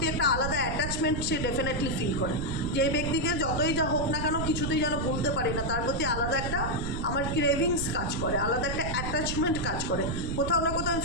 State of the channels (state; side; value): noise; right; rumble, 4 dB below the sound